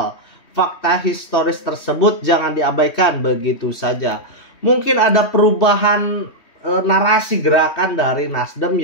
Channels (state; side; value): late; right; 3.2 ms